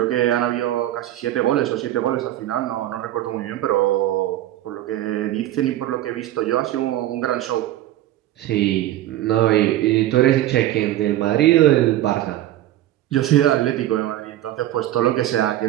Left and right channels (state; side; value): quieter; left; 13.9 dB